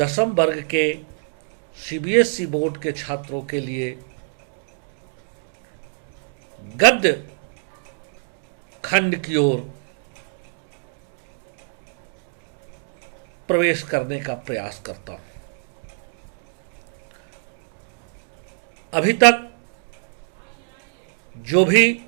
वर्ग के सीबीएसई बोर्ड के छात्रों के लिए गद्य खंड की ओर प्रवेश करने का प्रयास करता हूं। अभी तक जो भी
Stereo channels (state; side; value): silent; left; digital silence